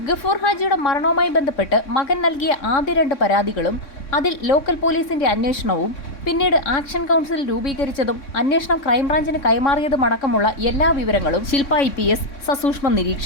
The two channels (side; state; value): right; late; 3.6 ms